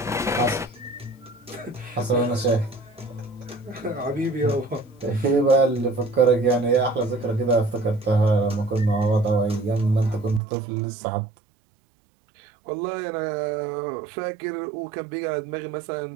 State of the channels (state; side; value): drops out; left; at 10.4 s